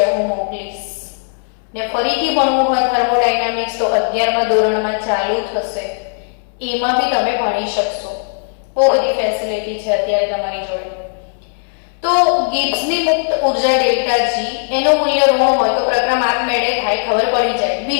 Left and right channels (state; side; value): silent; right; 67 dB below the other